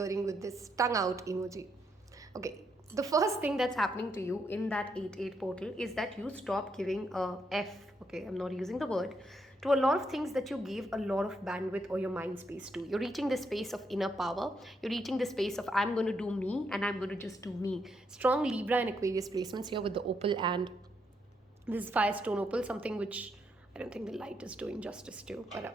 with this tongue out emoji. Okay. The first thing that's happening to you in that 8-8 portal is that you stop giving a F. Okay, I'm not using the word, to a lot of things that you gave a lot of bandwidth or your mind space to. You're reaching the space of inner power. You're reaching the space of I'm going to do me and I'm going to just do me. Strong Libra and Aquarius placements here with the opal, and this is Firestone opal, something which I don't think the light is doing justice to, but a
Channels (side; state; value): both; normal; correlation 0.77